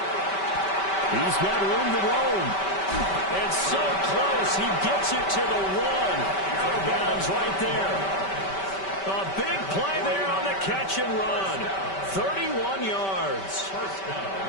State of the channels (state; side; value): late; right; 5.2 ms